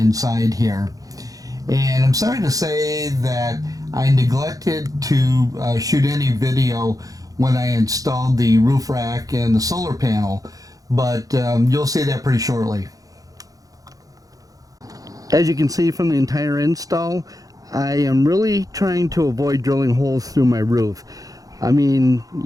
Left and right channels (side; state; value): left; late; 0.17 ms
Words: here. And I'm sorry to say that I neglected to shoot any video when I installed the roof rack and the solar panel, but you'll see that pretty shortly. As you can see from the entire install, I am really trying to avoid drilling holes through my roof. I mean,